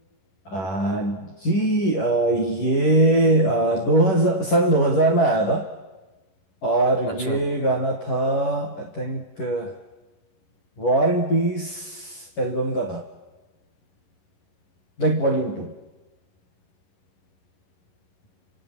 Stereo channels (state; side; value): late; right; 10 ms